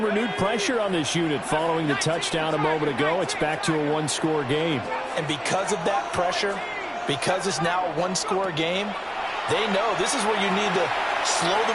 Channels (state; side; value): identical; both; correlation 1.00